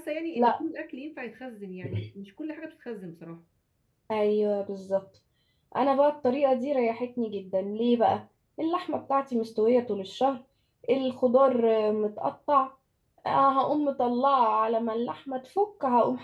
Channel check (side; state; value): both; identical; correlation 1.00